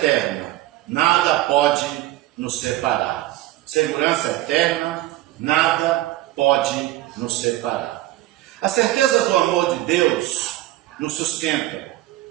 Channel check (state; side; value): quieter; left; 15.7 dB